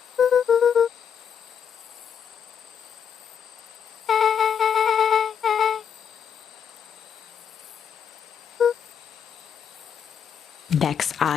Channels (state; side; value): quieter; right; 7.7 dB